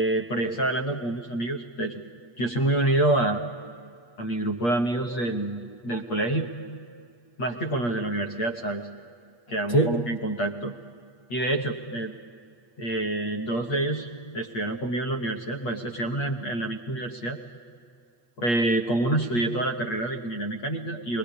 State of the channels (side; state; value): right; late; 8.4 ms